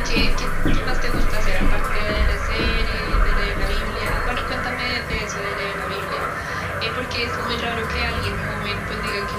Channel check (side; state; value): both; identical; correlation 1.00